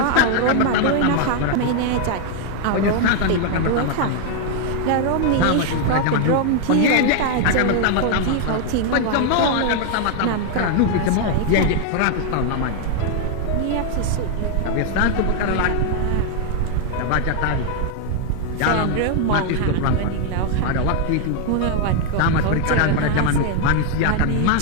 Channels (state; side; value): different; both; correlation 0.00